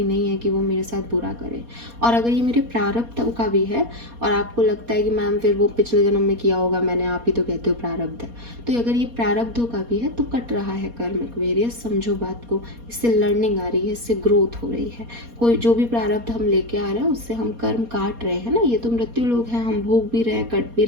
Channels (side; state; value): left; late; 4.2 ms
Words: नहीं है कि वो मेरे साथ बुरा करे। और अगर ये मेरे प्रारब्ध का भी है और आपको लगता है कि मैम फिर वो पिछले जन्म में किया होगा मैंने, आप ही तो कहते हो प्रारब्ध है, तो अगर ये प्रारब्धों का भी है तो कट रहा है कर्म एक्वेरियस, समझो बात को। इससे लर्निंग आ रही है, इससे ग्रोथ हो रही है। कोई जो भी प्रारब्ध हम लेके आ रहे हैं उससे हम कर्म काट रहे हैं ना, ये तो मृत्यु लोग हैं, हम भोग भी रहे, कट भी